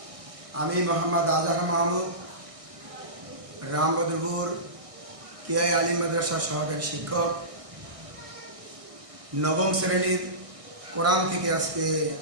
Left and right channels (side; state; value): left; late; 1.6 ms